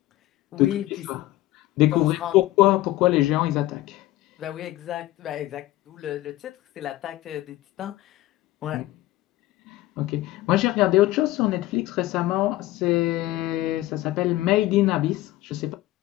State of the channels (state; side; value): quieter; right; 16.4 dB